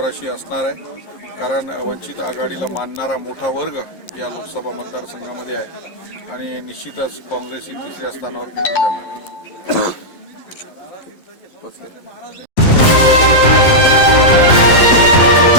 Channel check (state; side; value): late; right; 11 ms